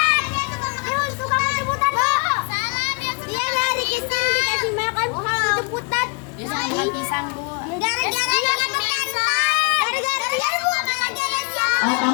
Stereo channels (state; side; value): quieter; right; 32.5 dB